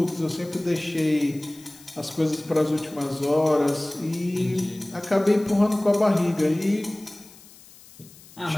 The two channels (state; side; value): noise; left; hiss, 22 dB below the sound